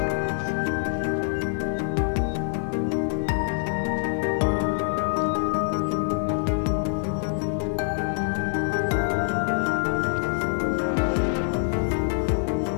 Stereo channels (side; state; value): right; silent; digital silence